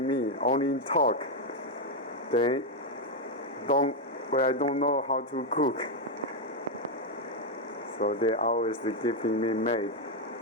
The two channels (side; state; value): both; normal; correlation 0.02